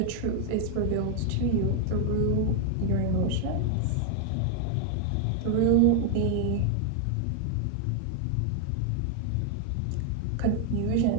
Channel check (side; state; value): both; different; correlation 0.00